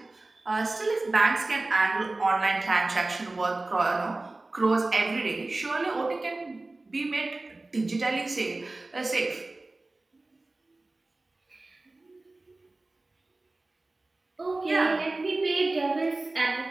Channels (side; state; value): left; quieter; 3.1 dB